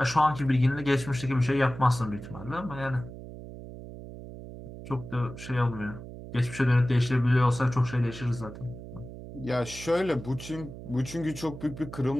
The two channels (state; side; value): noise; right; hum, 13 dB below the sound